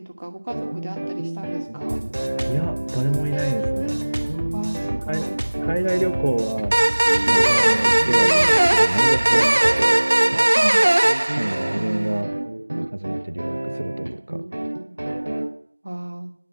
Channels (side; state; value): both; inverted; correlation -1.00